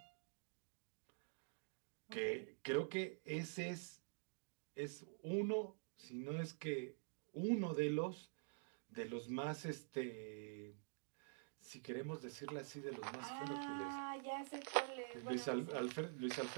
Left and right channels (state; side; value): silent; left; digital silence